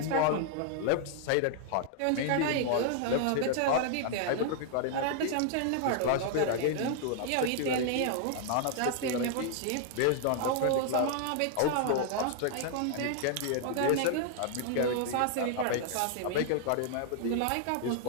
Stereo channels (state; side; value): different; both; correlation 0.00